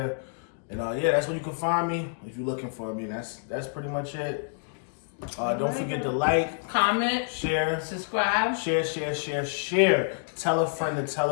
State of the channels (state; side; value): silent; right; digital silence